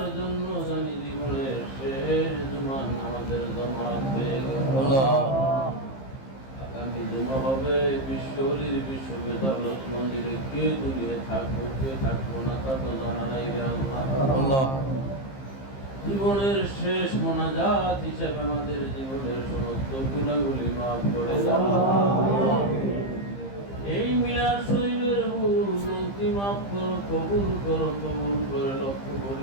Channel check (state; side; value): late; right; 15 ms